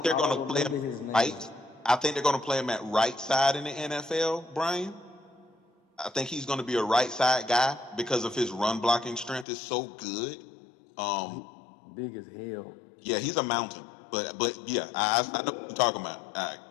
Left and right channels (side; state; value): right; drops out; at 9.5 s